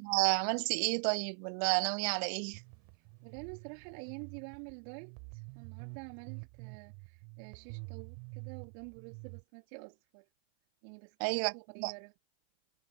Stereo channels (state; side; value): silent; left; 52 dB below the other